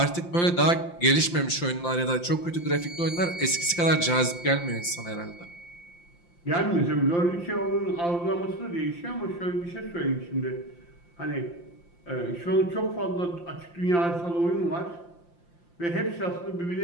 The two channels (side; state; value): right; late; 5.8 ms